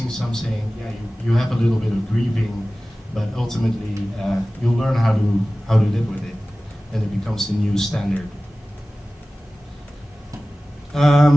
something, yeah, you have a little bit of grieving, but ultimately you'll learn how to live with it, and it becomes the new standard.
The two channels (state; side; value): normal; both; correlation 0.97